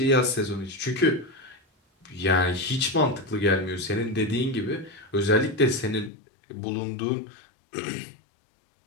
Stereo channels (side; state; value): right; drops out; at 6.1 s